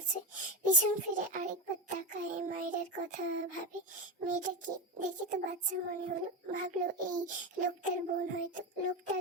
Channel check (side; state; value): both; normal; correlation 0.14